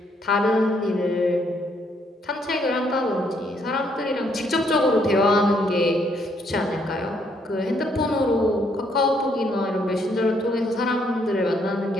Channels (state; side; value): normal; both; correlation 0.71